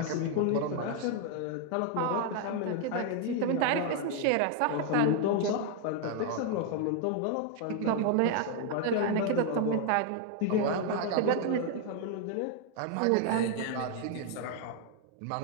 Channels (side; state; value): both; different; correlation 0.00